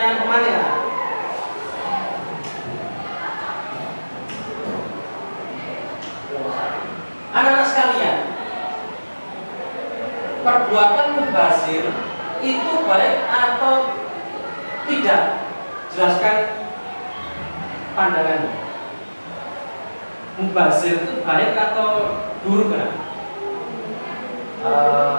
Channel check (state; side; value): inverted; both; correlation -1.00